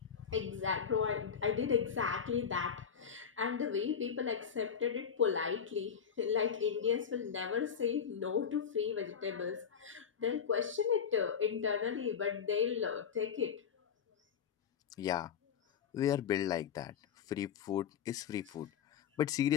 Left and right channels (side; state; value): right; quieter; 7.4 dB